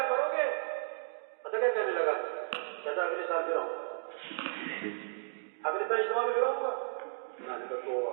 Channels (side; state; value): left; silent; digital silence